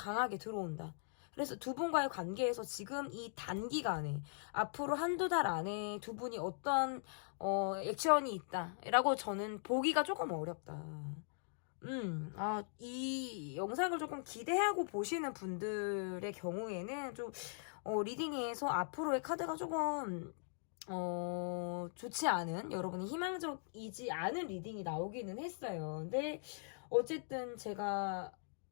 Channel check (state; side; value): silent; right; digital silence